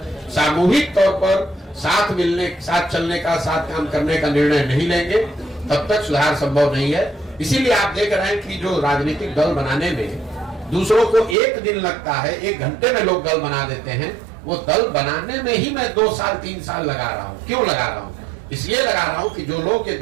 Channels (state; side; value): drops out; left; at 11.4 s